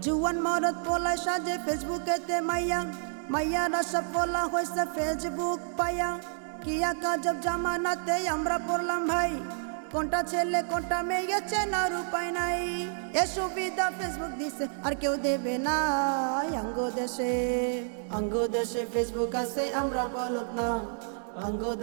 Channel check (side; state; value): left; silent; 58 dB below the other